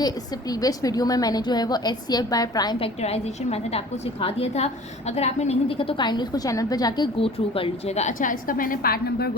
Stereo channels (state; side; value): normal; both; correlation 0.45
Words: इससे प्रीवियस वीडियो में मैंने जो है वो HCF by prime factorisation method आपको सिखा दिया था। अगर आपने नहीं देखा तो काइंडली उसको चैनल पर जाके गो थ्रू कर लीजिएगा। अच्छा, इसका मैंने पार्ट नंबर